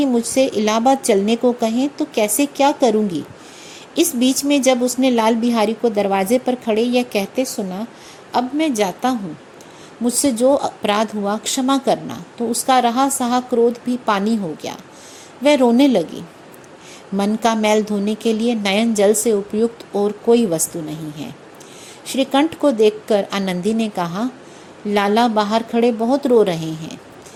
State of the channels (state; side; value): identical; both; correlation 1.00